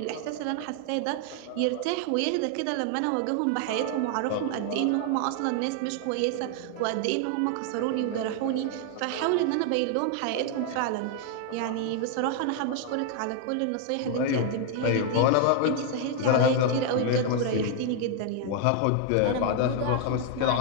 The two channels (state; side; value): different; both; correlation 0.00